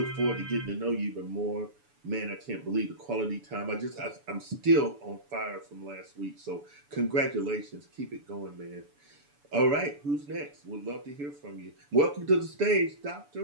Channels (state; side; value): late; left; 7.0 ms